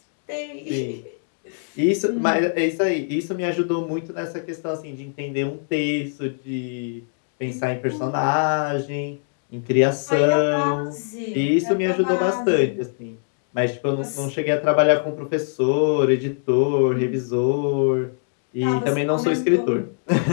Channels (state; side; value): silent; right; 64 dB below the other